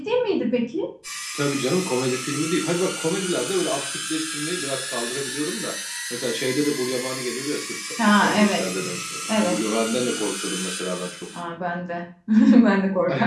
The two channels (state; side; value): identical; both; correlation 1.00